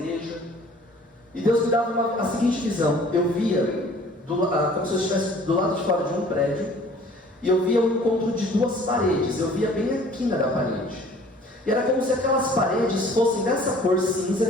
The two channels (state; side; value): normal; both; correlation 0.52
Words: e Deus me dava a seguinte visão. Eu via como se eu estivesse do lado de fora de um prédio, e eu via o encontro de 2 paredes. Eu via bem a quina da parede, e era como se aquelas paredes fossem dessa cor cinza,